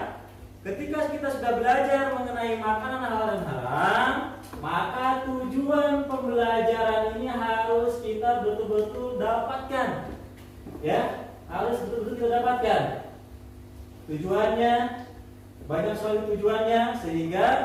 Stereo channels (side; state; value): both; identical; correlation 1.00